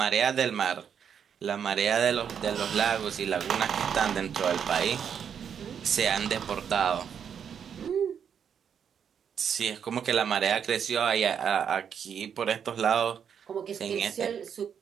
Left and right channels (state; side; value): quieter; left; 7.8 dB